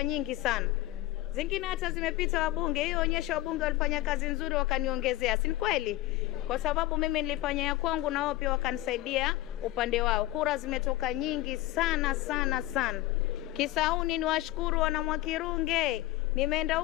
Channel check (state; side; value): quieter; right; 16.4 dB